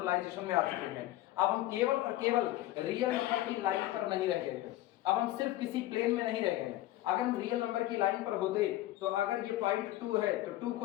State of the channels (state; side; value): quieter; right; 15.7 dB